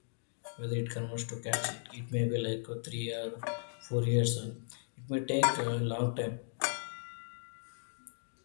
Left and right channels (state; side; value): silent; right; digital silence